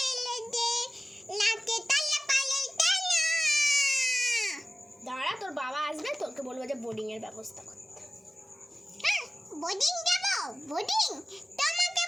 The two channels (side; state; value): both; normal; correlation 0.96